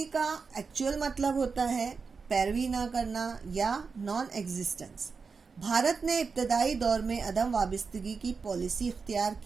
کا ایکچوئل مطلب ہوتا ہے پیروی نہ کرنا یا نان ایگزسٹنس. بھارت نے ابتدائی دور میں عدم وابستگی کی پالیسی اختیار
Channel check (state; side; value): quieter; left; 5.0 dB